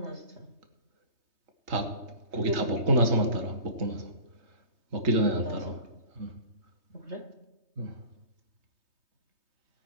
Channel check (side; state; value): left; late; 3.2 ms